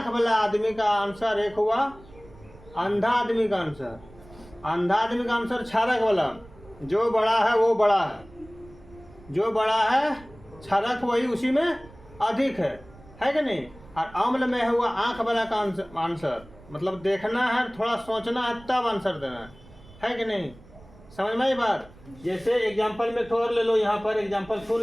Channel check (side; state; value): right; noise; rumble, 23 dB below the sound